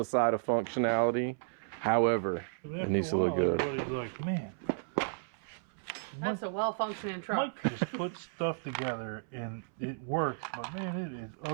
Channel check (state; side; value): silent; left; 55 dB below the other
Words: side of functionality. However, it needs to look good. Everybody's like, man, That's a well-functioning truck. Mike just put stuff together and it works, but man, it is